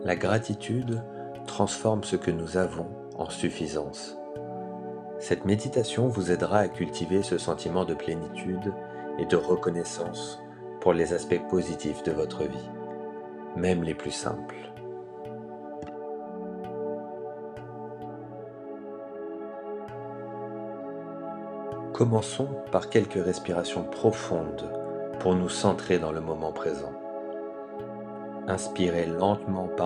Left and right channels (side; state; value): both; identical; correlation 1.00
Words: La gratitude transforme ce que nous avons en suffisance. Cette méditation vous aidera à cultiver ce sentiment de plénitude et de reconnaissance pour les aspects positifs de votre vie, même les plus simples. Commençons par quelques respirations profondes pour nous centrer dans le moment présent. Inspirez lentement